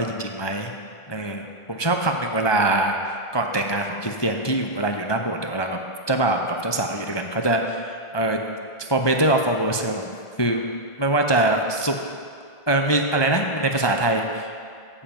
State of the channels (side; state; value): right; late; 1.2 ms